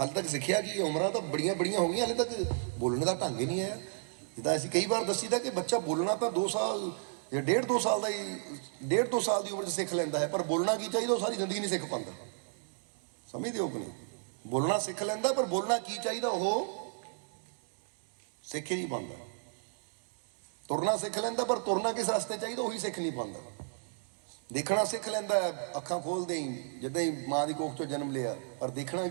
ਤੱਕ ਸਿੱਖਿਆ ਕੀ? ਉਮਰਾਂ ਤਾਂ ਬੜੀਆਂ ਹੋ ਗਈਆਂ, ਹਾਲੇ ਤੱਕ ਬੋਲਣ ਦਾ ਢੰਗ ਹੀ ਨਹੀਂ ਆਇਆ। ਜਿੱਦਾਂ ਅਸੀਂ ਕਈ ਵਾਰ ਦੱਸੀਦਾ ਕਿ ਬੱਚਾ ਬੋਲਣਾ ਤਾਂ 2 ਸਾਲ ਜਾਂ 1.5-2 ਸਾਲ ਦਾ ਹੀ, 1.5-2 ਸਾਲ ਦੀ ਉਮਰ 'ਚ ਸਿੱਖ ਲੈਂਦਾ ਹੈ। ਪਰ ਬੋਲਣਾ ਕੀ ਚਾਹੀਦਾ ਉਹ ਸਾਰੀ ਜ਼ਿੰਦਗੀ ਨਹੀਂ ਸਿੱਖ ਪਾਉਂਦਾ। ਸਮਝਦੇ ਹੋ ਕਿ ਨਹੀਂ? ਬੋਲਣਾ ਸਿੱਖ ਲੈਂਦਾ, ਪਰ ਬੋਲਣਾ ਕੀ ਚਾਹੀਦਾ ਉਹ ਸਿੱਖ ਹੀ ਨਹੀਂ ਪਾਉਂਦਾ। ਤੁਰਨਾ ਸਿੱਖ ਲੈਂਦਾ, ਪਰ ਤੁਰਨਾ ਕਿਸ ਰਸਤੇ ਚਾਹੀਦਾ ਉਹੀ ਸਿੱਖ ਨਹੀਂ ਪਾਉਂਦਾ। ਦੇਖਣਾ ਸਿੱਖ ਲੈਂਦਾ, ਅੱਖਾਂ ਖੋਲਦੇ ਹੀ ਜਿੱਦਾਂ ਹੀ ਮਾਂ ਦੀ ਕੋਖ 'ਚੋਂ ਜਨਮ ਲਿਆ, ਪਰ ਦੇਖਣਾ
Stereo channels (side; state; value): left; silent; digital silence